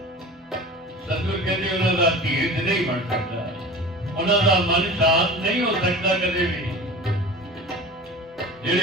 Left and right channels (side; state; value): both; normal; correlation 0.37